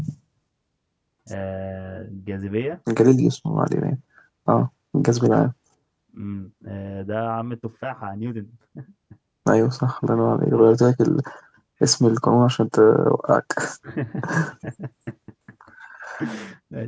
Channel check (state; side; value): identical; both; correlation 1.00